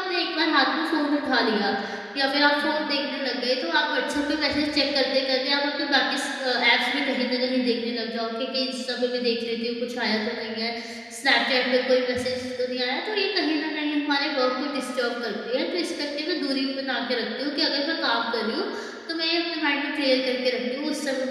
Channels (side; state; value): both; identical; correlation 1.00